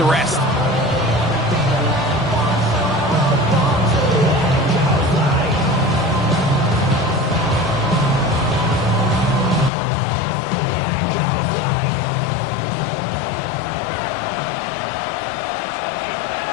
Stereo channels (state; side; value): drops out; right; at 9.7 s